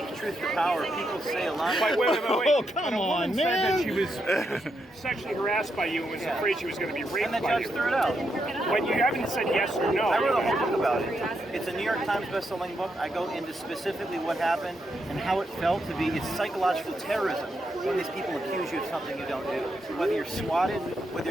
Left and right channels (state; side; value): normal; both; correlation 0.82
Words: truth to power, people say a lot. Wait. Oh, come When a woman on, said man. that she was sexually harassed by you and was afraid she was going to be raped And the by judge you. threw it out. But you haven't said yes or no. I wrote a whole book about it. It's a New York Times best-selling book. I go into specifically what happened and how it felt to be. It's psychological terrorism when these people accuse you of something you don't do. Whether you're swatted, whether